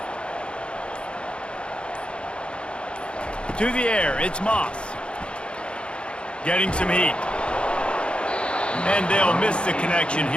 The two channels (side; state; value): right; late; 0.056 ms